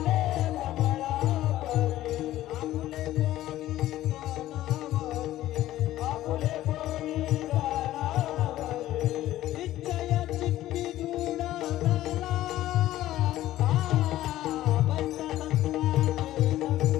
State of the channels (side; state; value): right; quieter; 14.4 dB